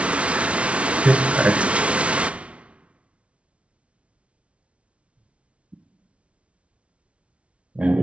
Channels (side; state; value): left; late; 0.062 ms